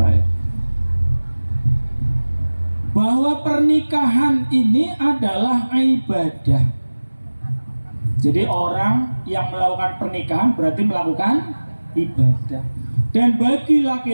bahwa pernikahan ini adalah ibadah. Jadi orang yang melakukan pernikahan berarti melakukan ibadah. Dan bagi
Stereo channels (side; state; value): both; inverted; correlation -1.00